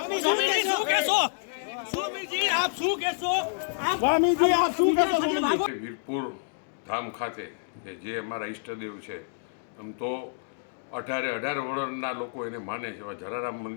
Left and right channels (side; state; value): right; silent; digital silence